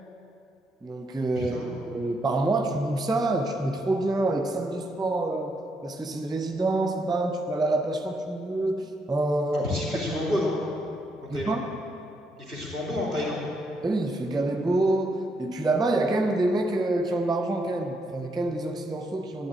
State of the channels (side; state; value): both; normal; correlation 0.77